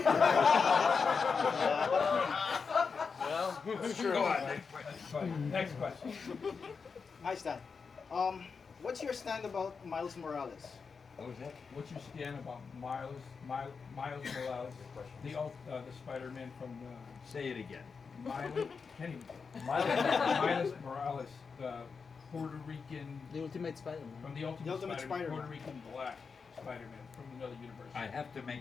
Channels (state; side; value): quieter; right; 5.3 dB